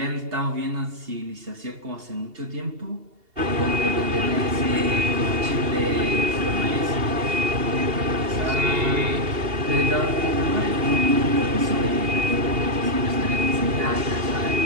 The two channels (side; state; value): left; late; 2.8 ms